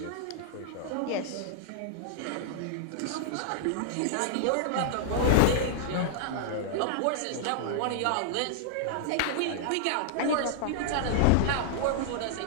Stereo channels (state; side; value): different; both; correlation -0.01